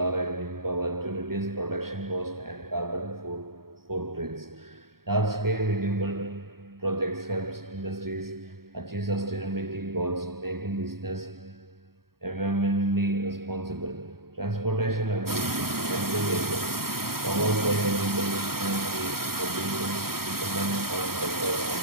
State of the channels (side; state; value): left; late; 0.93 ms